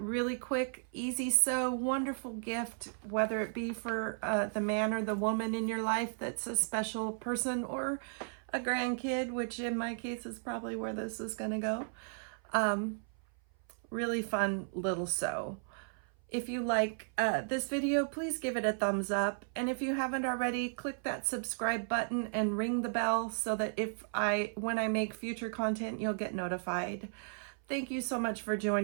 quick, easy sew, wonderful gift, whether it be for the man or the woman in your life that's a special person, or a grandkid, which in my case is probably where this is going to go. Really fun little sew. If you like this video, please give it a thumbs up. And if you haven't already, click that subscribe button and ring the bell so that when I make future content, you'll get notified. Thank you so much for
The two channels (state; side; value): silent; left; 55 dB below the other